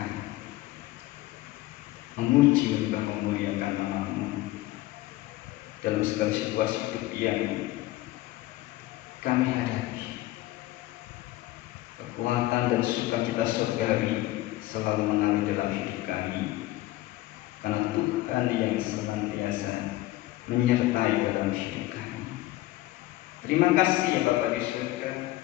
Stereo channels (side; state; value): right; quieter; 17.4 dB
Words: memuji, menyembah, memuliakan nama-Mu dalam segala situasi hidup yang kami hadapi. Kekuatan dan sukacita surgawi selalu mengalir dalam hidup kami, karena Tuhan yang senantiasa menyertai dalam hidup kami. Terima kasih ya Bapa di surga.